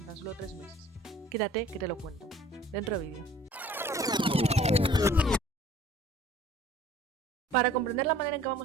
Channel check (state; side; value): normal; both; correlation 0.52